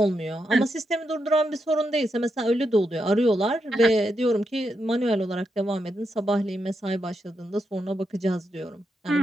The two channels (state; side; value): normal; both; correlation 0.84